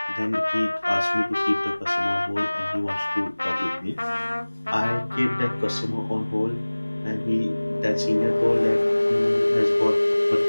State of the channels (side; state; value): both; inverted; correlation -1.00